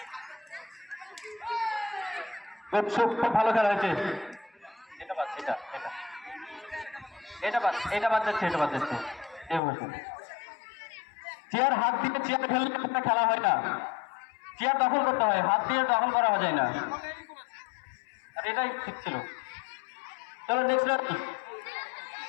খুব ভালো খেলা হয়েছে। এটা বাদ, এটা এটা এটা বাদ, এটা বাদ যাচ্ছে, এটা বাদ যাচ্ছে। চেয়ার হাত দিয়ে চেয়ার খেললে কোনো খেলা হয় না, চেয়ার দখল করতে হয়, হাত দিয়ে দখল করা যায় না। আর এটাই ঠিক ছিল। চলো next ready,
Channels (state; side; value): drops out; right; at 9.6 s